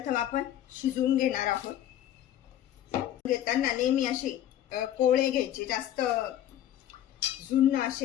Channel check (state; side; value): quieter; right; 11.7 dB